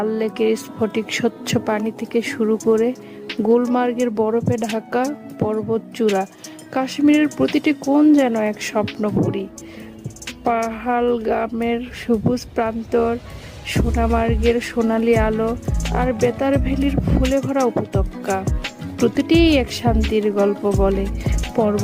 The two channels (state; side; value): identical; both; correlation 1.00